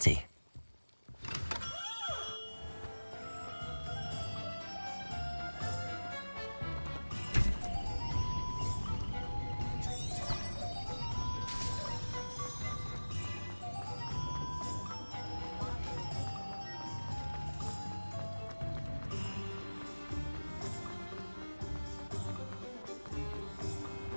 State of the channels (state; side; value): inverted; both; correlation -1.00